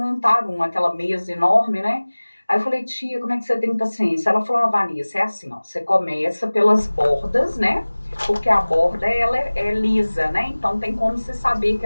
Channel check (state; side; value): inverted; both; correlation -1.00